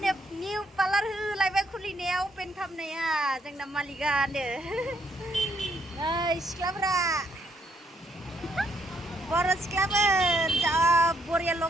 निउ पार्लार होलायबाय खुलिनायाव ओपेन खालामनाया जोंना मालिकआनो नै सिख्लाफोरा बर' सिख्लाफोर जा बरिया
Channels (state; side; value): normal; both; correlation 0.72